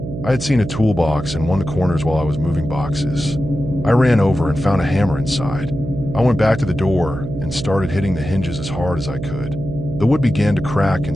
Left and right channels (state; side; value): noise; right; hum, 7 dB below the sound